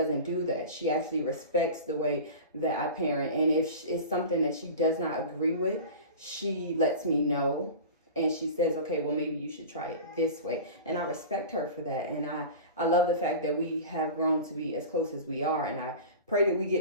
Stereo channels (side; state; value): both; inverted; correlation -0.33